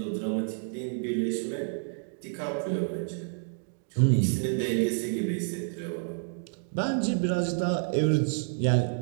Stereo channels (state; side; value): silent; left; digital silence